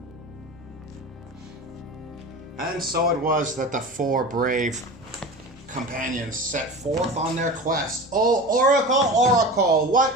And so it was that the 4 brave companions set forth on their quest. Oh, Oracle, Oracle,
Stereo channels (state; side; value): normal; both; correlation 0.32